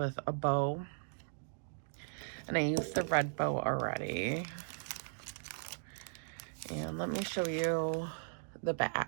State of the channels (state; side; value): silent; left; digital silence